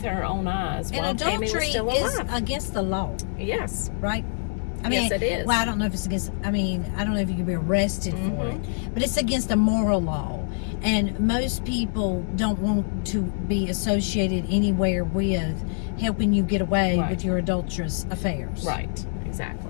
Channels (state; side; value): silent; right; digital silence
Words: her own eyes And while Tammy was adultery still is alive. against the law, Yes. right? Yes, it is. Well, I don't know if it's against, I don't know if you can be arrested for it, but it's against a moral law. And most people don't want to be associated anywhere with helping you get away Right. with your adulterous affairs. Right,